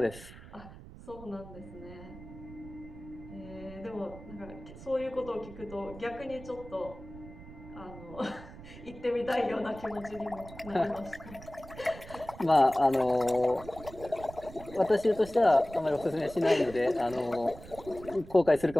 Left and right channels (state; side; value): noise; right; rumble, 16 dB below the sound